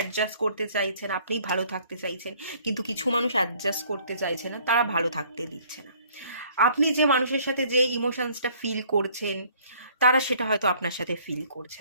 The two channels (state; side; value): inverted; both; correlation -0.58